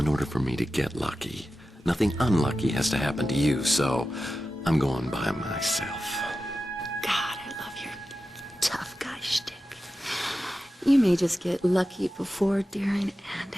order for me to get lucky, nothing unlucky has to happen to you, so I'm going by myself. God, I love your tough guy shtick. You may just get lucky before, during, and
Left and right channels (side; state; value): both; normal; correlation 0.93